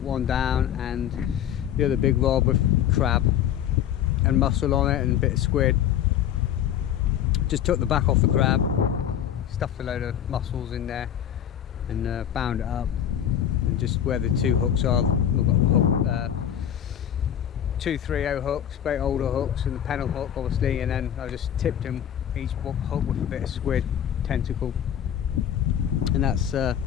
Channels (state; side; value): quieter; right; 10.0 dB